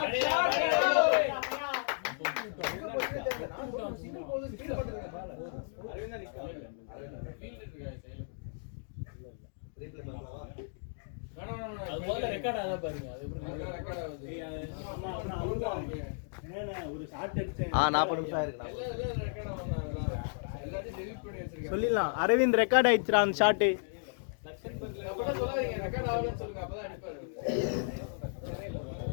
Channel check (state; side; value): silent; right; digital silence